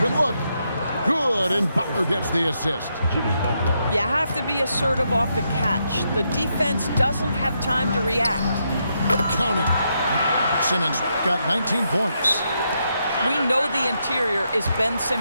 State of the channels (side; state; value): both; inverted; correlation -0.80